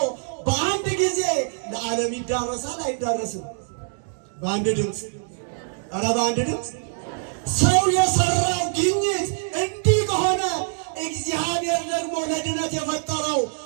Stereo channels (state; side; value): silent; left; digital silence